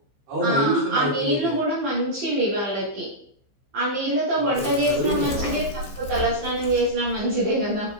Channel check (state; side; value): late; left; 15 ms